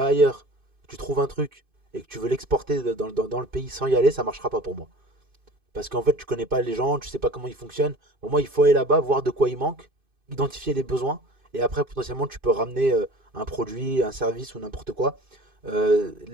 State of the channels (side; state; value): left; late; 2.5 ms